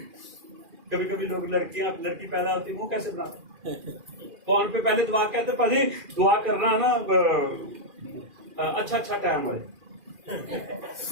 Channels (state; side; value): late; left; 2.4 ms